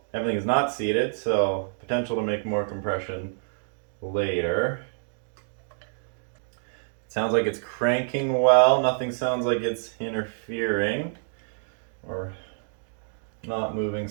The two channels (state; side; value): silent; left; digital silence